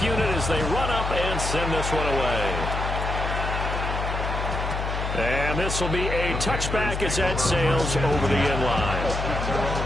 unit as they run up and send this one away. And this will be a touchback as that sails over the end line.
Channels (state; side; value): noise; left; hum, 3 dB below the sound